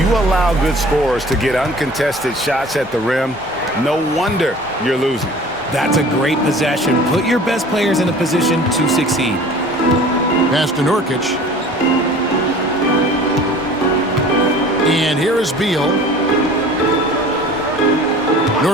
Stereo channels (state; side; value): normal; both; correlation 0.45